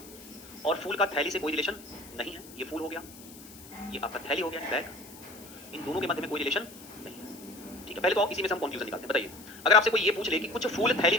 और फूल का थैली से कोई रिलेशन नहीं है, ये फूल हो गया, ये आपका थैली हो गया, बैग, इन दोनों के मध्य में कोई रिलेशन नहीं है। ठीक है, पहले तो आप इसी में से हम कंक्लूजन निकालते हैं। बताइए, अगर आपसे कोई ये पूछ ले कि कुछ फूल थैली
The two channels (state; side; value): noise; left; hiss, 18 dB below the sound